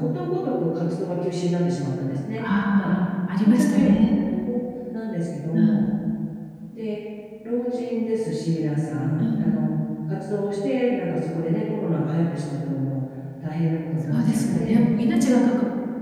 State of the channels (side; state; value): both; identical; correlation 1.00